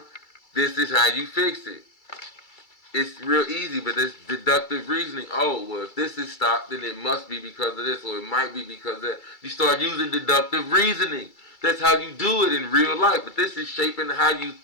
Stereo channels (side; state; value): right; late; 2.3 ms